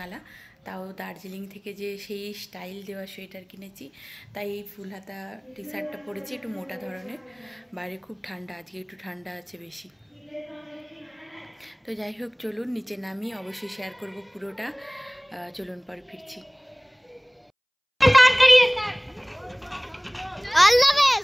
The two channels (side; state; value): both; identical; correlation 1.00